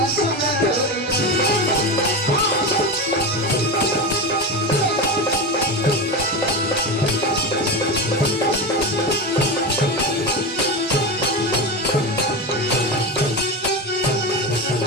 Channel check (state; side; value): normal; both; correlation 0.20